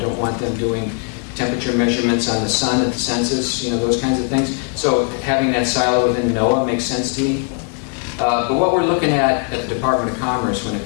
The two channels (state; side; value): quieter; right; 38.0 dB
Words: don't want them doing temperature measurements on the sun at the census, those kinds of things. So having that silo within NOAA makes sense to me. But what we're looking at the Department of Commerce when it